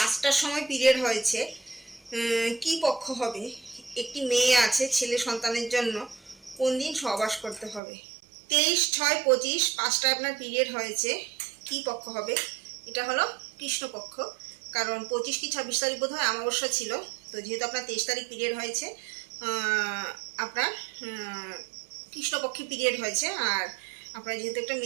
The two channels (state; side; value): drops out; left; at 7.8 s